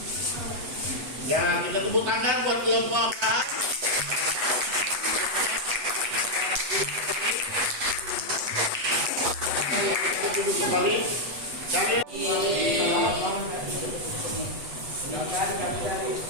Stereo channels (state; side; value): late; left; 8.1 ms